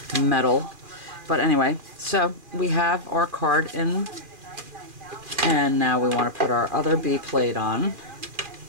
metal. But anyway, so we have our card in, and now we want to put our other B plate on,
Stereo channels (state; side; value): late; left; 2.4 ms